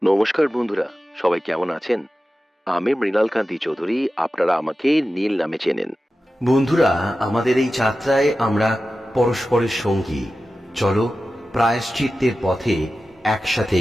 নমস্কার বন্ধুরা, সবাই কেমন আছেন? আমি মৃণাল কান্তি চৌধুরী, আপনারা আমাকে নীল নামে চেনেন। বন্ধুরা, আমাদের এই যাত্রায় আমরা পরস্পরের সঙ্গী। চলো প্রায়শ্চিত্তের পথে একসাথে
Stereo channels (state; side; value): normal; both; correlation 0.94